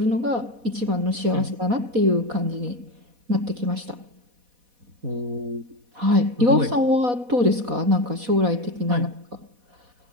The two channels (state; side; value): late; left; 4.1 ms